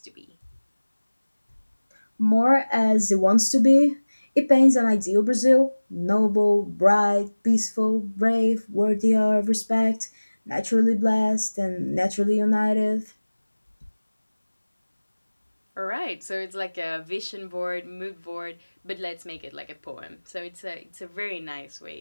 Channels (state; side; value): inverted; both; correlation -1.00